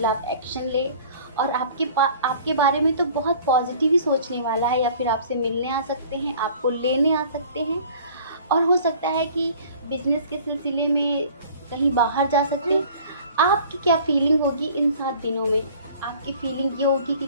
एक्शन ले, और आपके बारे में तो बहुत पॉजिटिव ही सोचने वाला है, या फिर आपसे मिलने आ सकते हैं, आपको लेने आ सकते हैं। और हो सकता है कि बिजनेस के सिलसिले में कहीं बाहर जा सकते हैं। आपकी क्या फीलिंग होगी इन 7 दिनों में? आपकी फीलिंग ये होगी कि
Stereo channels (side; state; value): both; inverted; correlation -0.49